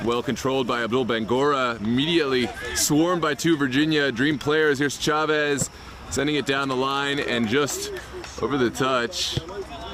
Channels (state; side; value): identical; both; correlation 1.00